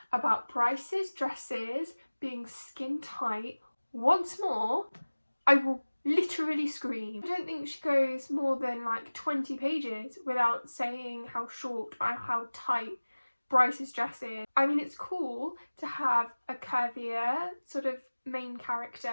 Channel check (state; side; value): inverted; both; correlation -1.00